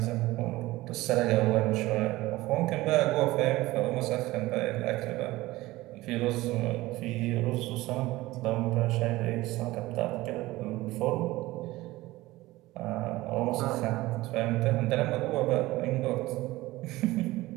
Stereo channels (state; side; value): quieter; left; 18.6 dB